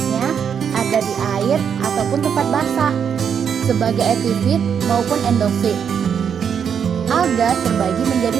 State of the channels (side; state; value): left; quieter; 7.5 dB